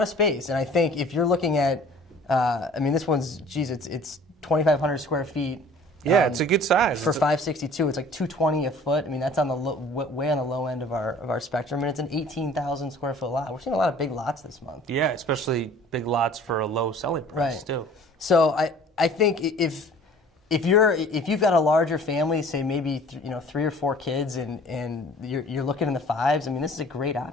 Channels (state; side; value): normal; both; correlation 0.49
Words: of space, and I think if you're looking at, this one's, it's 2,500 square feet. Yeah, it's a good size. For $562, it's like $220 a foot. I mean, that's on the way on the low end of our spectrum, and it's an 18,000 square foot lot. We're seeing a lot of big lots this month. Yeah, especially big lots for a low selling price, Right. too. So I think if you've got a larger family, say maybe 3 or 4 kids, and you're looking in the fives, I mean, this is a great